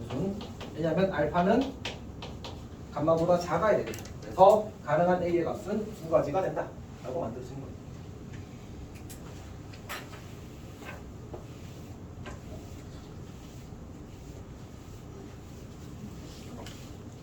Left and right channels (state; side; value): identical; both; correlation 1.00